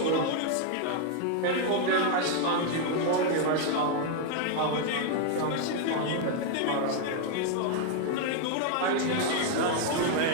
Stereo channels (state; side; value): different; both; correlation 0.00